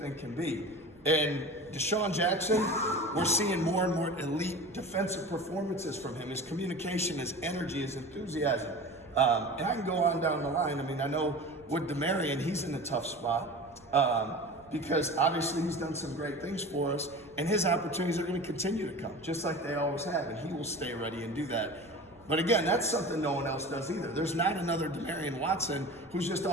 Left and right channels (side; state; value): right; noise; rumble, 27 dB below the sound